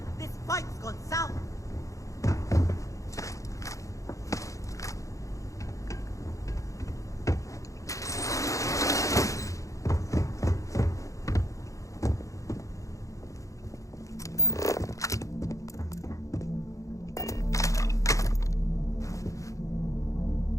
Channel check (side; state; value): right; late; 0.16 ms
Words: This fight's gone south.